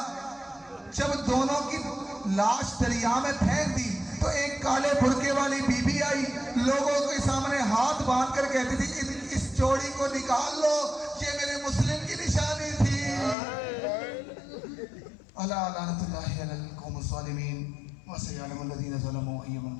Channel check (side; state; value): right; drops out; at 13.4 s